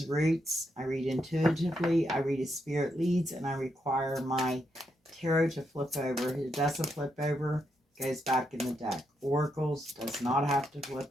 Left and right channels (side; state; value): both; normal; correlation 0.80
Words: Roots. I read intuitively, I read as spirit leads, and I require my tarot to flip over. If it doesn't flip over, it goes back in the deck. Oracles does not have to flip